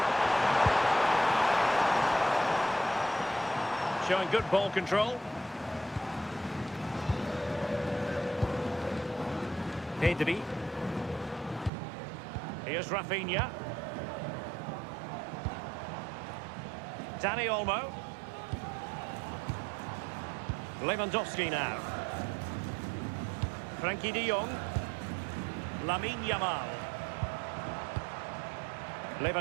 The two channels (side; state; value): left; drops out; at 11.7 s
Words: showing good ball control. Pedri. Here's Rafinha. Dani Olmo. Lewandowski now. Frankie de Jong. Lamine Yamal.